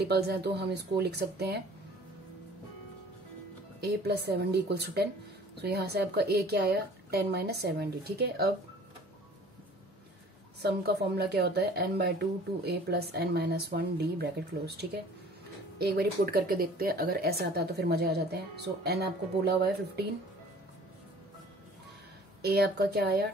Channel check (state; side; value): normal; both; correlation 0.49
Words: हैं, तो हम इसको लिख सकते हैं a plus 7d equals to 10। So यहाँ से आपका a क्या आया 10 माइनस 7d, ठीक है। अब सम का फॉर्मूला क्या होता है n/2 2a plus n minus 1d bracket close, ठीक है। एक बार पुट करके देखते हैं, अगर ऐसा आता है तो फिर मजे आ जाते हैं। सो n आपको बोला हुआ है 15, a आपका क्या आया